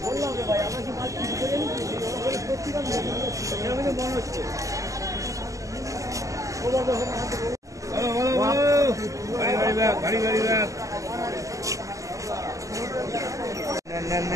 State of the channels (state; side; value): late; left; 0.16 ms